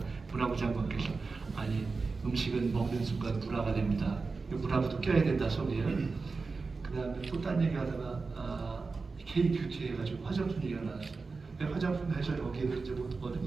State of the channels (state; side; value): quieter; left; 4.2 dB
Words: 문화부 장관께서 아니 음식은 먹는 순간 문화가 됩니다. 문화부도 껴야 된다 소리예요. 그 다음에 또 딴 얘기 하다가 K뷰티 해가지고 화장품 얘기가 나왔어요. 화장품 해서 여기에도 이제 뭐